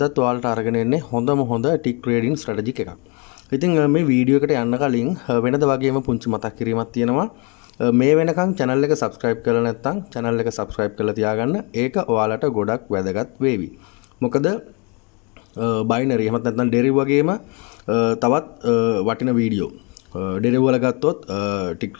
ඔයාලට අරගෙන එන්නේ හොඳම හොඳ ටික් ට්‍රේඩින් ස්ට්‍රැටජි එකක්. ඉතින් මේ වීඩියෝ එකට යන්න කලින් වෙනද වගේම පුංචි මතක් කිරීමක් තියෙනවා. මේ වෙනකන් channel එක subscribe කරලා නැත්නම් channel එක subscribe කරලා තියාගන්න. ඒක ඔයාලට ගොඩක් වැදගත් වේවි. මොකද බයිනරි එහෙමත් නැත්නම් ඩෙරිව් වගේම තවත් වටින වීඩියෝ ඩෙරිව් වල ගත්තොත් ටික්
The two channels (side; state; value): right; quieter; 32.0 dB